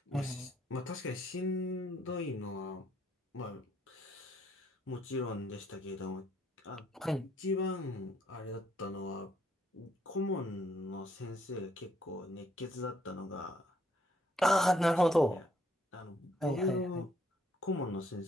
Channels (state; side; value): normal; both; correlation 0.69